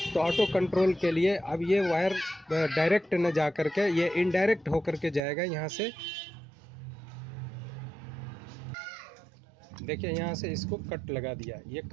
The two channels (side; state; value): left; drops out; at 5.2 s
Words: तो ऑटो कंट्रोल के लिए अब ये वायर डायरेक्ट न जा करके ये इनडायरेक्ट होकर के जाएगा यहाँ से। देखिए यहाँ से इसको कट लगा दिया, ये